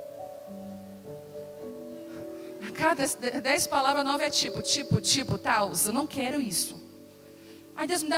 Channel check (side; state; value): both; identical; correlation 1.00